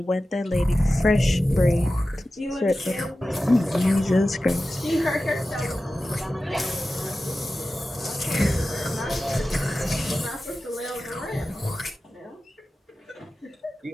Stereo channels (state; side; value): normal; both; correlation 0.94